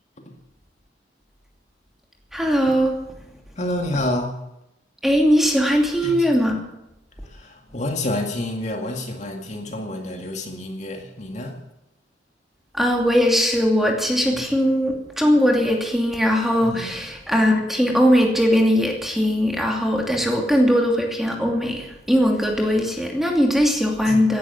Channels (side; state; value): both; normal; correlation 0.83